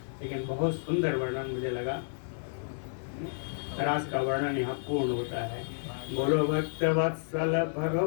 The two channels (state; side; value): silent; right; digital silence